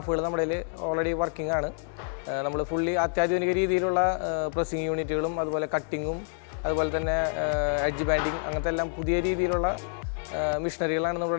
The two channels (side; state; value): right; silent; 60 dB below the other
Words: നമ്മുടെ ഓൾറെഡി വർക്കിംഗ് ആണ്. നമ്മൾ ഫുള്ളി അത്യാധുനിക രീതിയിലുള്ള പ്രസ്സിങ് യൂണിറ്റുകളും അതുപോലെ കട്ടിങ്ങും അതുപോലെ തന്നെ എഡ്ജ് ബാൻഡിങ് അങ്ങനത്തെ എല്ലാം പുതിയ രീതിയിലുള്ള മെഷീനറികളാണ്